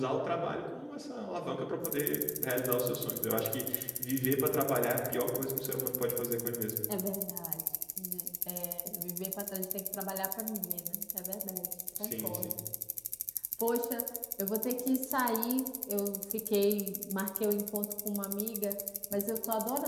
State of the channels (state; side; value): identical; both; correlation 1.00